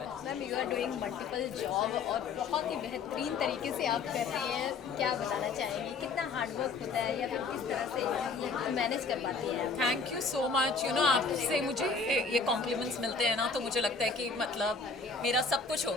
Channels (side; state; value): right; quieter; 4.5 dB